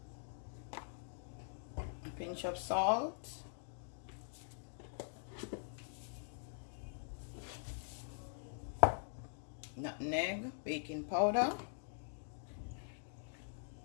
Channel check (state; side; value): silent; right; digital silence